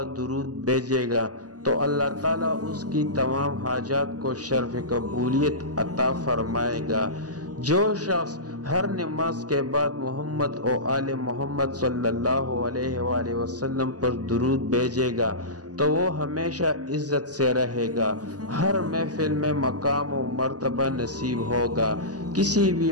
درود بھیجے گا تو اللہ تعالیٰ اس کی تمام حاجات کو شرف قبولیت عطا فرمائے گا۔ جو شخص ہر نماز کے بعد محمد اور آل محمد صلی اللہ علیہ وآلہ وسلم پر درود بھیجے گا تو وہ ہمیشہ عزت سے رہے گا، ہر محفل میں مقام و مرتبہ نصیب ہوگا۔ کسی بھی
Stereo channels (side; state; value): left; late; 0.68 ms